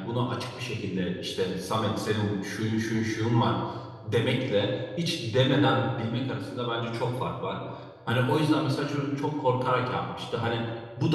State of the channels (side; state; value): both; identical; correlation 1.00